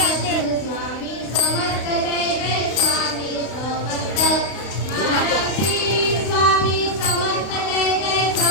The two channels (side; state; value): right; late; 32 ms